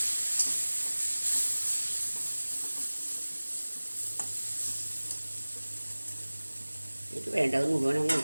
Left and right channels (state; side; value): inverted; both; correlation -1.00